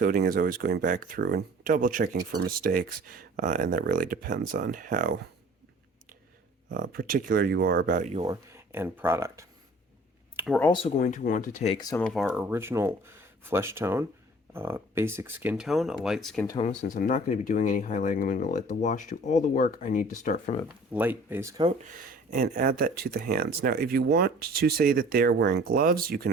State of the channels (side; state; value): both; normal; correlation 0.49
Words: is always going back through and double checking for mistakes, and that really depends on how particular you are about your end product. We're also going to want to take some of our original flesh tone, basic skin tone, a light skin tone. Since I'm not going to be doing any highlighting, I'm going to let the wash do all the work. I need to start from a light base coat and add that to the hands. Now, if you want to say that they're wearing gloves, you can